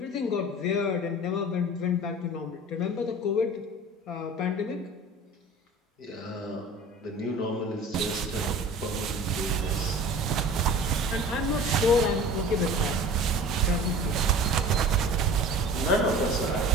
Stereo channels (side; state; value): both; normal; correlation 0.41